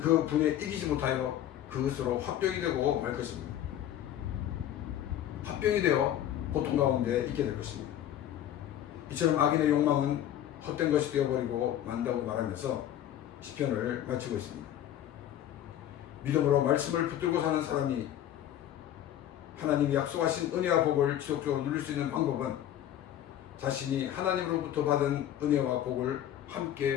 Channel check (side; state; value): right; quieter; 11.4 dB